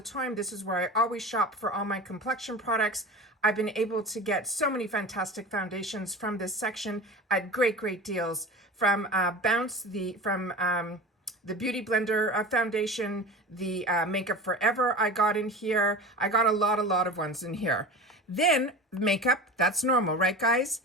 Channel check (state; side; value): normal; both; correlation 0.32